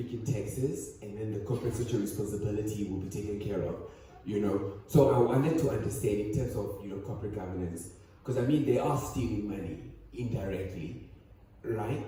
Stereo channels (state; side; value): identical; both; correlation 1.00